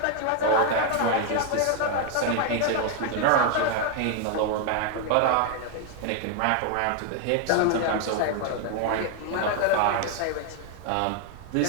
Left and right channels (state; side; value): different; both; correlation 0.00